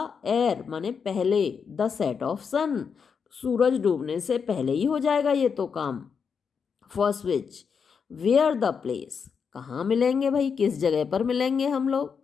एर, माने पहले, द सेट ऑफ सन, सूरज डूबने से पहले ही हो जाएगा ये तो काम। First witch, where the place, कहाँ मिलेंगे भाई, किस जगह पर मिलेंगे हम लोग।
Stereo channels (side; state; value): right; quieter; 6.2 dB